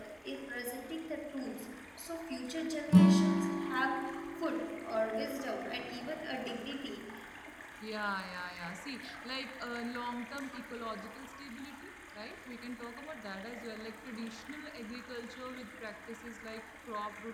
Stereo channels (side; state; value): both; identical; correlation 1.00